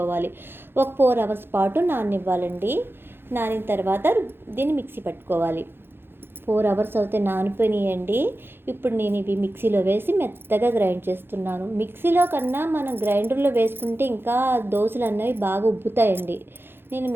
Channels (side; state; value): left; late; 0.10 ms